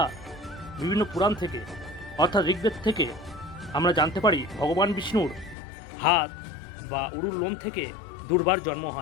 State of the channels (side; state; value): right; drops out; at 5.6 s